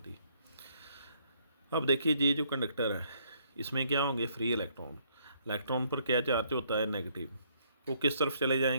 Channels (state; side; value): inverted; both; correlation -0.68